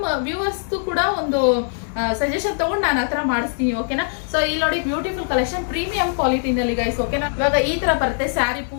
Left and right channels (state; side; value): silent; right; 56 dB below the other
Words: ವ್ಯೂವರ್ಸ್ದು ಕೂಡ ಒಂದು ಸಜೆಷನ್ ತಗೊಂಡು ನಾನು ಹತ್ರ ಮಾಡಿಸ್ತೀನಿ. ಓಕೆನಾ, ಸೊ ಇಲ್ಲಿ ನೋಡಿ ಬ್ಯೂಟಿಫುಲ್ ಕಲೆಕ್ಷನ್ ಪ್ರೀಮಿಯಂ ಕ್ವಾಲಿಟಿನಲ್ಲಿ ಗೈಸ್. ಓಕೆನಾ, ಇವಾಗ ಈ ತರ ಬರುತ್ತೆ ಸ್ಯಾರಿ